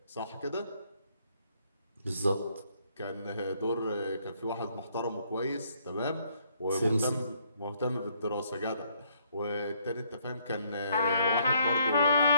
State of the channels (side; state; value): both; inverted; correlation -0.69